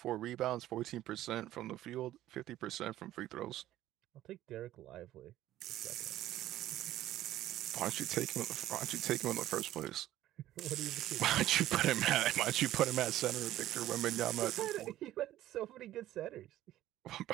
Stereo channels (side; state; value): left; quieter; 13.9 dB